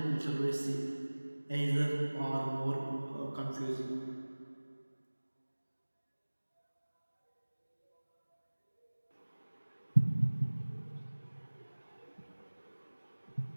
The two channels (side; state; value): both; inverted; correlation -1.00